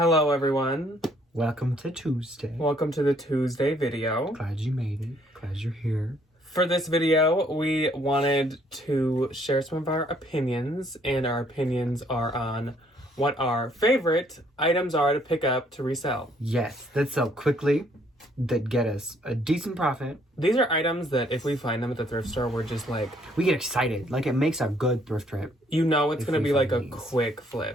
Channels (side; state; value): both; normal; correlation 0.66